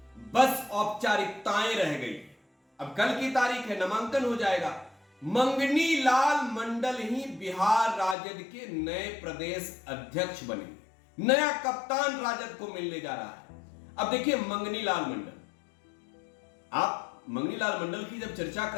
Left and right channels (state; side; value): drops out; right; at 8.2 s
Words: बस औपचारिकताएं रह गई। अब कल की तारीख है, नामांकन हो जाएगा। मंगनी लाल मंडल ही बिहार राजद के नए प्रदेश अध्यक्ष बनेंगे। नया कप्तान राजद को मिलने जा रहा है। अब देखिए, मंगनी लाल मंडल, आप मंगनी लाल मंडल की जब चर्चा